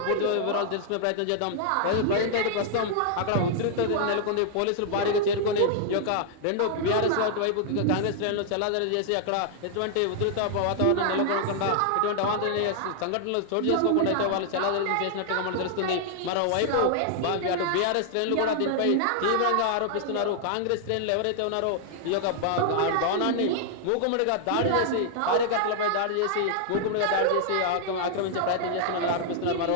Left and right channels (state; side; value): different; both; correlation -0.01